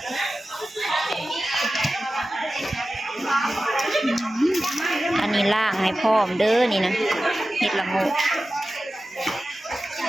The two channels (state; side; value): normal; both; correlation 0.95